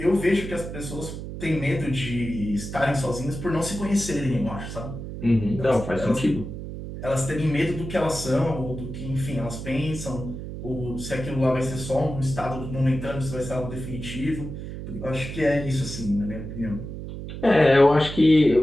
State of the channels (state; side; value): noise; right; hum, 8 dB below the sound